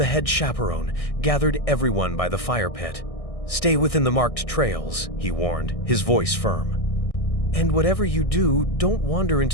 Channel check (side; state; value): right; late; 1.6 ms